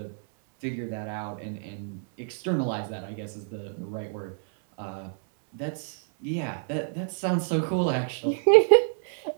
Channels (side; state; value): left; silent; 58 dB below the other